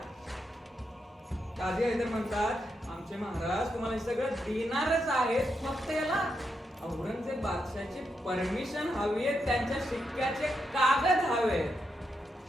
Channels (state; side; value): normal; both; correlation 0.83